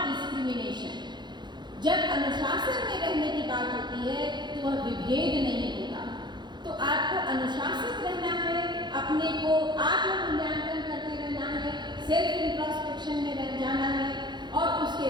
डिस्क्रिमिनेशन। जब अनुशासन में रहने की बात होती है तो वह विभेद नहीं होगा। तो आपको अनुशासित रहना है, अपने को आत्म मूल्यांकन करते रहना है, सेल्फ इंट्रोस्पेक्शन में रह जाना है। और उसके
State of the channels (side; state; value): left; late; 0.21 ms